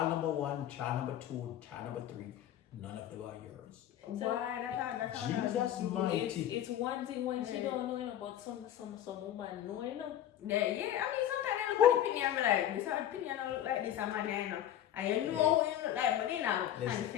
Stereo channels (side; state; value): right; quieter; 11.4 dB